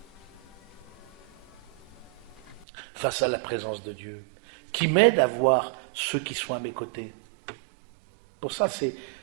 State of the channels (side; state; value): left; drops out; at 2.7 s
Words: Face à la présence de Dieu, qui m'aide à voir ceux qui sont à mes côtés. Pour ça,